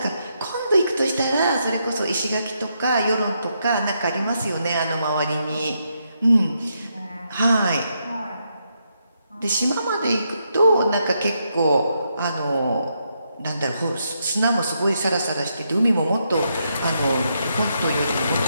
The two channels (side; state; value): both; inverted; correlation -0.80